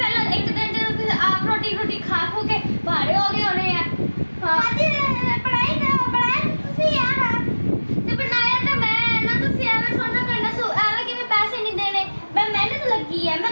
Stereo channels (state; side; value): inverted; both; correlation -1.00